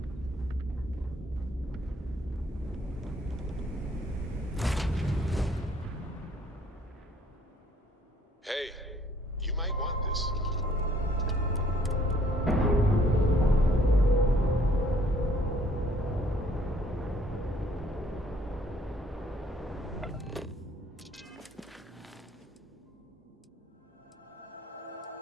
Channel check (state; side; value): normal; both; correlation 0.62